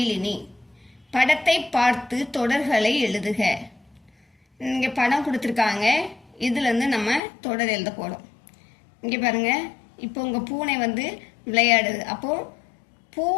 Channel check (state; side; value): drops out; right; at 7.2 s